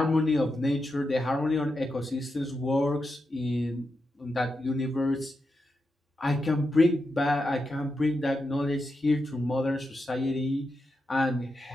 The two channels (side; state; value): both; normal; correlation 0.87